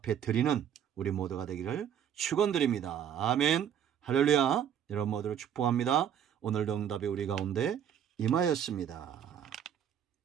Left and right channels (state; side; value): quieter; left; 9.1 dB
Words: 드리는 우리 모두가 되기를 축원드립니다. 아멘. 할렐루야. 여러분 모두를 축복합니다. 오늘도 응답이 우리 가운데 임하였습니다.